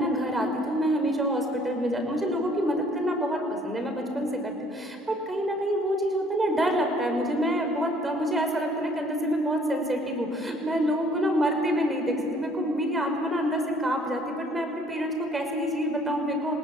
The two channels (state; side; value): normal; both; correlation 0.59